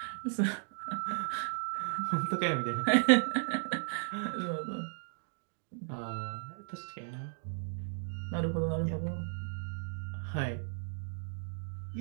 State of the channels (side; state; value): left; silent; digital silence